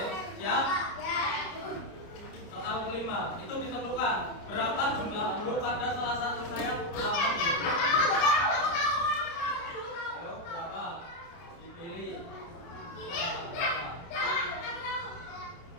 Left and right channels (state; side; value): late; right; 29 ms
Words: siap? Soal kelima itu ditentukan berapa jumlah huruf pada salah satu sayap alfabet. Ayo, berapa? Dipilih.